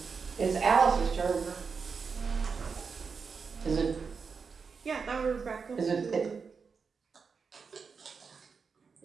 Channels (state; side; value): quieter; left; 5.4 dB